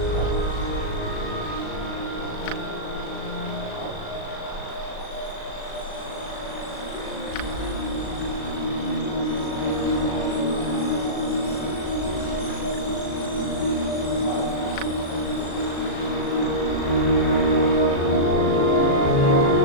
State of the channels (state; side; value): late; right; 36 ms